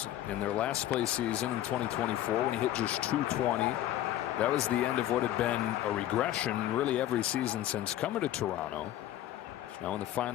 in their last place season in 2024 when he hit just 220. That was the end of what had been a regression really every season since coming to Toronto. Now in the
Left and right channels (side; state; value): right; quieter; 13.1 dB